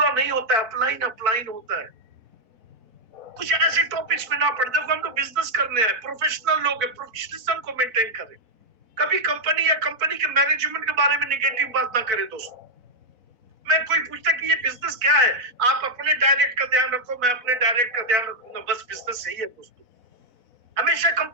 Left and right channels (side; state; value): left; late; 4.0 ms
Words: नहीं होता है, अपलाइन अपलाइन होता है। कुछ ऐसे टॉपिक्स में ना पढ़, देखो हम लोग बिजनेस करने हैं, प्रोफेशनल लोग हैं, प्रोफेशनलिज्म को मेंटेन करें। कभी कंपनी या कंपनी के मैनेजमेंट के बारे में नेगेटिव बात ना करें दोस्तों। मैं कोई पूछता कि ये बिजनेस क्या है, आप अपने डायरेक्ट का ध्यान रखो, मैं अपने डायरेक्ट का ध्यान रखूंगा, बस बिजनेस यही है दोस्तों। हमेशा